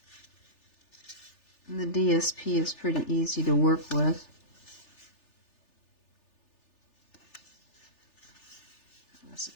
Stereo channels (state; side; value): late; right; 3.4 ms